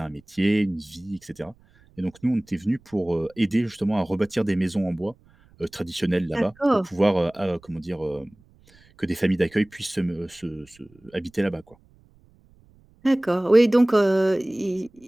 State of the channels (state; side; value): noise; right; rumble, 29 dB below the sound